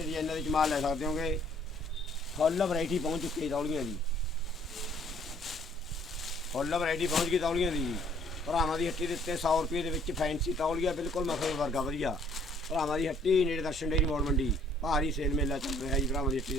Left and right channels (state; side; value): normal; both; correlation 0.61